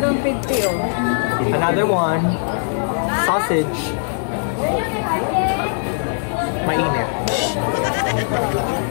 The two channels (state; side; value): silent; right; 66 dB below the other